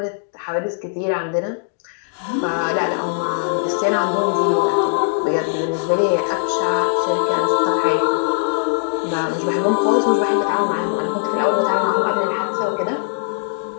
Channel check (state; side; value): silent; right; digital silence